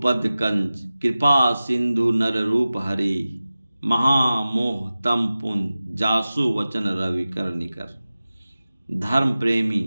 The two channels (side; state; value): both; inverted; correlation -0.96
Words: कंज कृपा सिंधु नर रूप हरि, महामोह तम पुन जासु वचन रवि कर निकर। धर्म प्रेमी